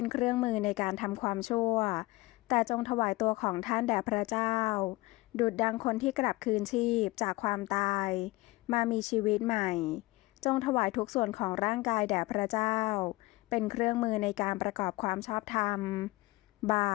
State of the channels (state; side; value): quieter; right; 21.1 dB